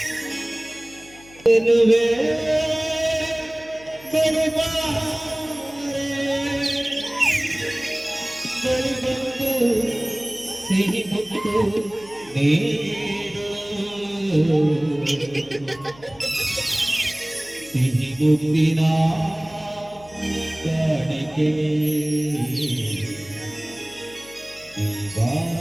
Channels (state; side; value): noise; left; hum, 23 dB below the sound